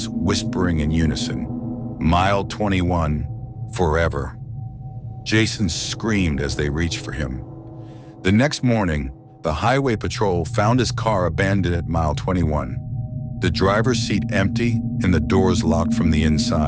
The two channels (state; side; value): identical; both; correlation 1.00